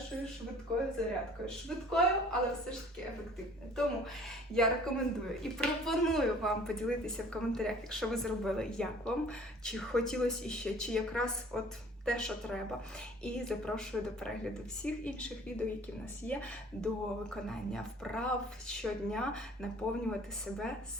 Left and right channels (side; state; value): both; normal; correlation 0.51